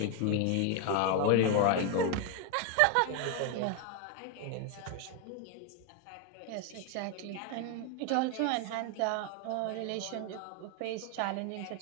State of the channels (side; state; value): both; different; correlation 0.01